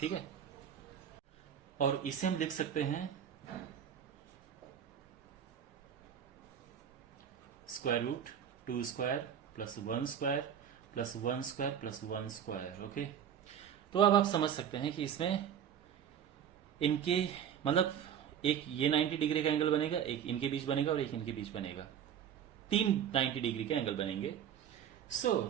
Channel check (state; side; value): quieter; left; 8.9 dB